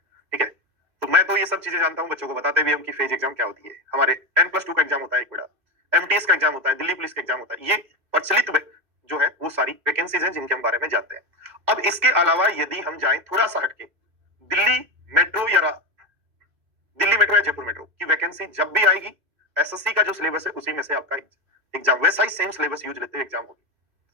ठीक है। तो मैं तो ये सब चीजें जानता हूँ, बच्चों को बताते भी हम कि फेज एग्जाम क्या होती है। हमारे 10+2 का एग्जाम होता है एक बड़ा, एमटीएस का एग्जाम होता है, दिल्ली पुलिस का एग्जाम होता है, ये प्रचलित जो है वो सारी वैकेंसीज हैं जिनके हम बारे में जानते हैं। अब इसके अलावा यदि हम जाएं थोड़ा सा हटके, दिल्ली मेट्रो या जयपुर मेट्रो की वैकेंसी जब भी आएगी, एसएससी का जो सिलेबस है उसी में से आपका एग्जाम वैसा ही सेम सिलेबस यूज लेते हुए एग्जाम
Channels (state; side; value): late; left; 1.6 ms